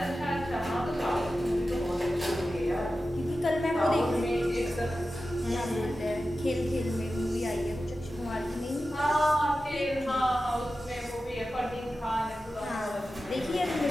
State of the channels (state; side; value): normal; both; correlation 0.93